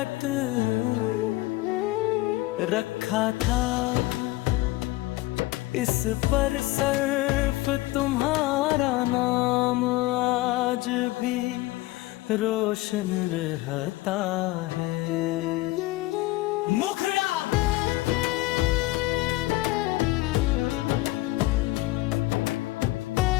रखा था, इस पर सिर्फ तुम्हारा नाम आज भी रोशन रहता है। मुखड़ा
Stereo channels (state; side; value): quieter; right; 19.0 dB